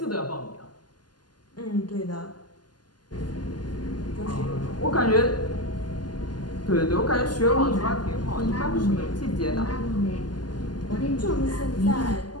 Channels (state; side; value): late; right; 0.70 ms